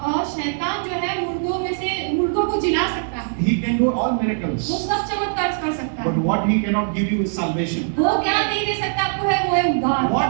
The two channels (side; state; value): left; silent; 65 dB below the other